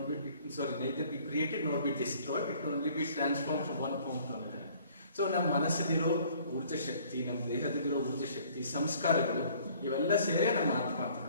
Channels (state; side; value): inverted; both; correlation -0.56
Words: neither be created not be destroyed, it only be transform from one form to another. So ನಮ್ಮ ಮನಸ್ಸಲ್ಲಿರೋ ಊರ್ಜಾ ಶಕ್ತಿ, ನಮ್ಮ ದೇಹದಲ್ಲಿರೋ ಊರ್ಜಾ ಶಕ್ತಿ, ಸಂಸ್ಕಾರಗಳು ಇವೆಲ್ಲ ಸೇರೇ ನಮ್ಮ ಆತ್ಮ ಅಂತ